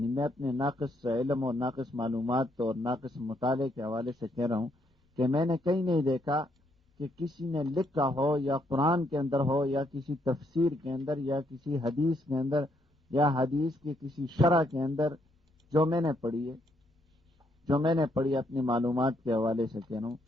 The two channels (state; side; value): normal; both; correlation 0.73